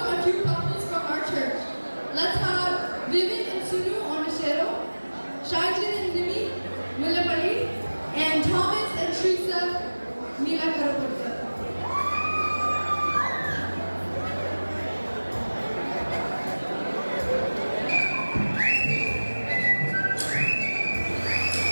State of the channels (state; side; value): inverted; both; correlation -1.00